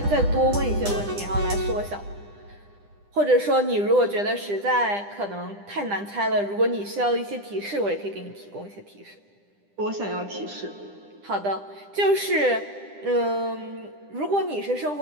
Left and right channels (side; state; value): left; late; 10 ms